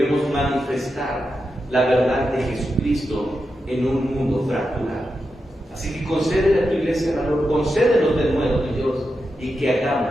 manifestar la verdad de Jesucristo en un mundo fracturado. Así que concédele a tu iglesia valor, concédenos de nuevo, mi Dios, y que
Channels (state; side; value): normal; both; correlation 0.88